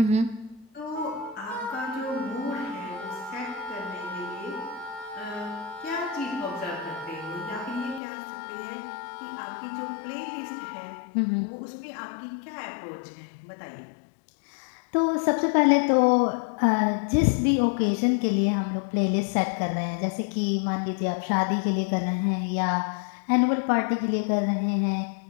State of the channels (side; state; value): right; drops out; at 8.0 s